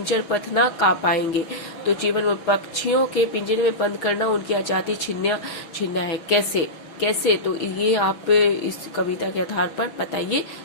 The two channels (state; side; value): late; right; 6.1 ms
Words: पथ ना का पाएंगे। तो जीवन मूल्य, पक्षियों के पिंजरे में बंद करना उनकी आजादी छीनना है। कैसे तो ये आप इस कविता के आधार पर बताइए।